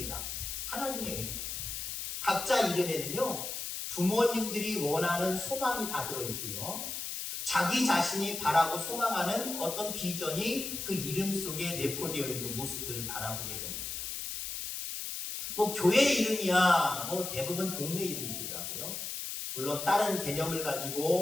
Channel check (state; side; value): noise; left; hiss, 5 dB below the sound